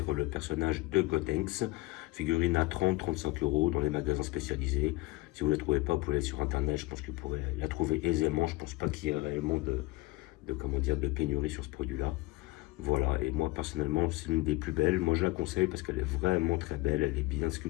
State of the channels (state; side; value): quieter; right; 20.8 dB